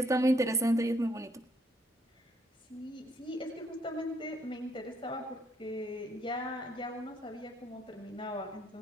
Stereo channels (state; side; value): normal; both; correlation 0.69